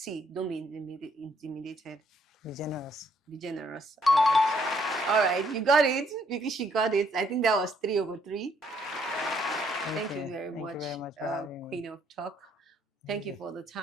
don't be intimidated. Be generous. Be generous. All right. You got it. Because she got it. I think that was 3 over 3. Thank you very much for having me. Queen of Talk. Thank you for the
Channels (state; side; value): normal; both; correlation 0.69